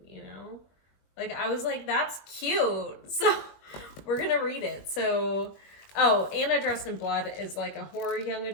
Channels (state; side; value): late; right; 21 ms